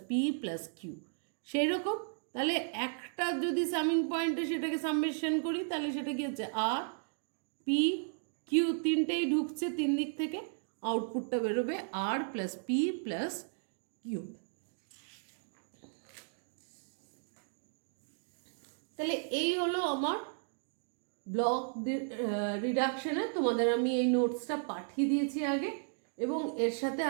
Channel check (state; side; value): silent; left; digital silence